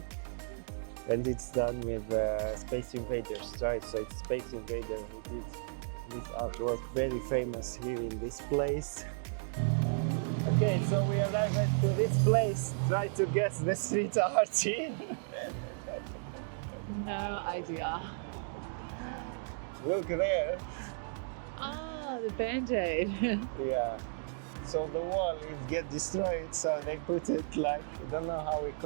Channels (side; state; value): left; silent; digital silence